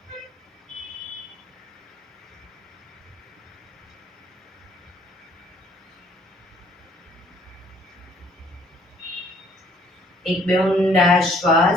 એક બે ઊંડા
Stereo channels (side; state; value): both; normal; correlation 0.61